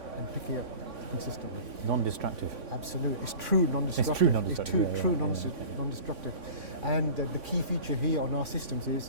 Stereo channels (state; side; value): late; left; 3.5 ms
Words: and picking it consistently. Non-destructive. Absolutely. It's true non-destructive. It's true non-destructive. It's true non-destructive. And the key feature here on our systems